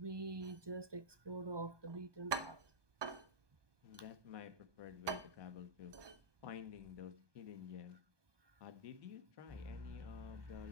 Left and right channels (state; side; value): late; left; 1.2 ms